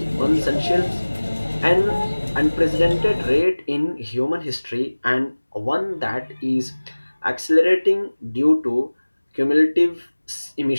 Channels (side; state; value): both; inverted; correlation -1.00